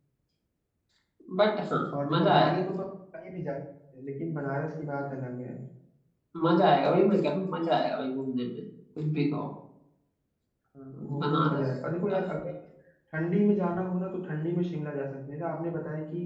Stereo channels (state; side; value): identical; both; correlation 1.00